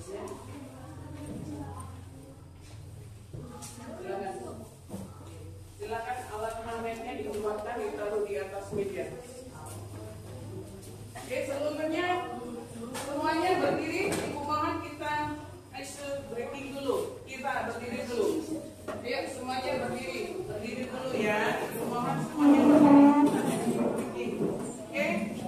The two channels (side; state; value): both; identical; correlation 1.00